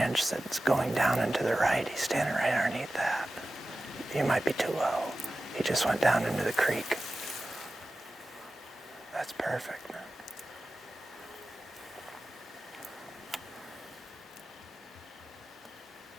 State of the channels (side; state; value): both; normal; correlation 0.95